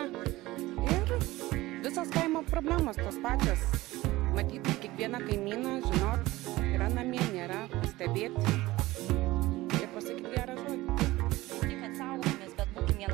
Ir visos kaimo problemos tos pačios. Matyti kiekvieną kaimyną, žinot, yra namie, nėra, stebėti ir pasakyti gerą žodį. Tik, kad saugomės, bet būkim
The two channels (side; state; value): left; quieter; 18.5 dB